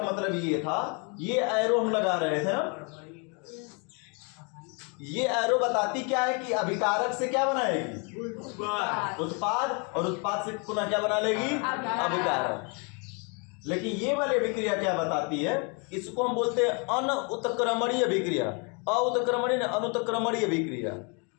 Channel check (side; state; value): right; quieter; 34.6 dB